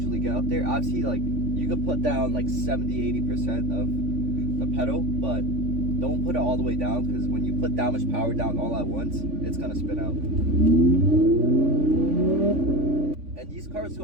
get up there. Obviously, like you could put down like 70-80% of the pedal, but don't put it all the way down, because when you put that much power down all at once, it's gonna spin out. And these cars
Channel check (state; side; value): late; left; 3.5 ms